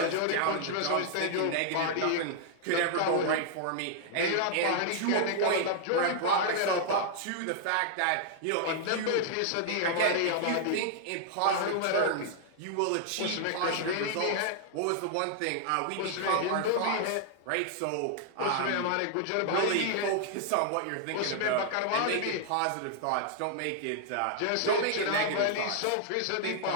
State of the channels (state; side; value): different; both; correlation -0.01